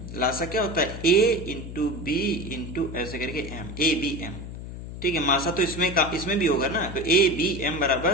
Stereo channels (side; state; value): left; noise; hum, 10 dB below the sound